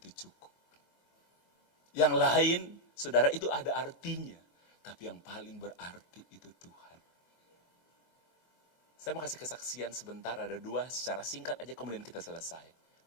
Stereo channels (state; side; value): late; right; 22 ms